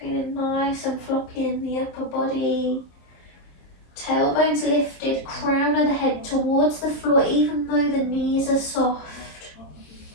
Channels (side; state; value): right; late; 26 ms